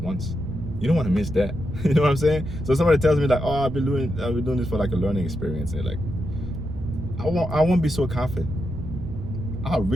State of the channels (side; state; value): right; noise; rumble, 10 dB below the sound